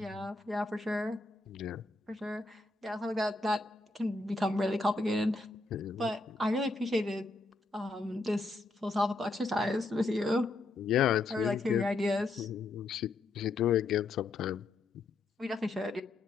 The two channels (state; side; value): quieter; right; 3.2 dB